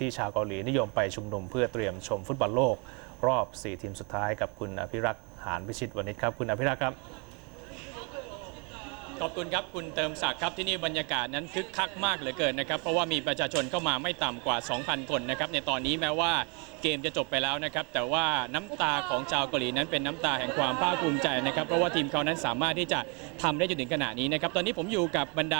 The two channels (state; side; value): quieter; left; 31.1 dB